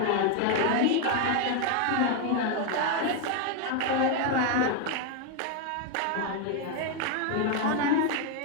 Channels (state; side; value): different; both; correlation 0.01